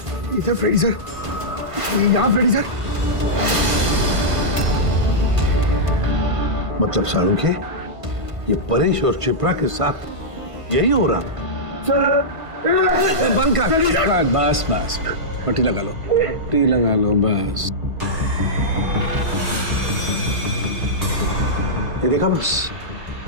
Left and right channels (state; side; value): late; left; 1.5 ms